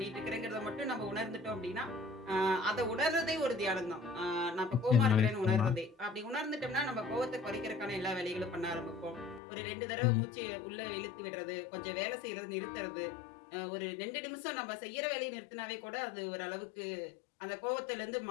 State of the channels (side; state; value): right; drops out; at 9.4 s